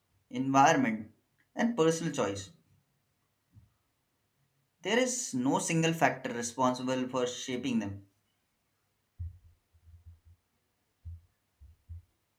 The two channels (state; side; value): identical; both; correlation 1.00